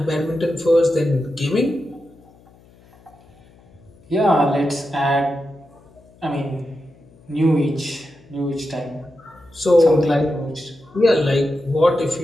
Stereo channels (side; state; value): left; noise; hum, 28 dB below the sound